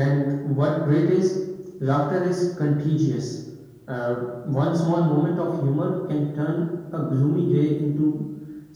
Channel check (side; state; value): both; identical; correlation 1.00